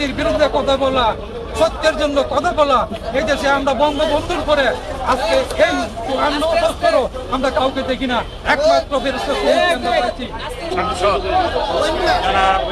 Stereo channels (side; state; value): both; identical; correlation 1.00